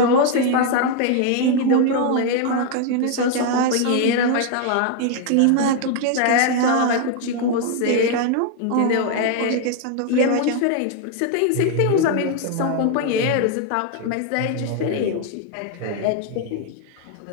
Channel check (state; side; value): different; both; correlation 0.01